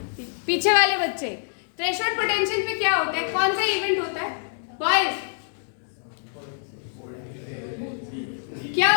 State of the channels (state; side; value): silent; right; digital silence